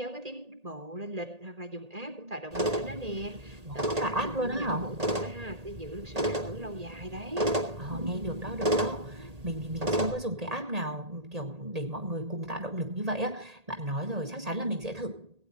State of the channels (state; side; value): late; left; 1.8 ms